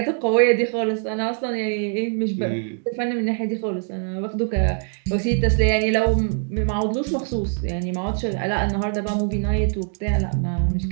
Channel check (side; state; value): left; silent; 56 dB below the other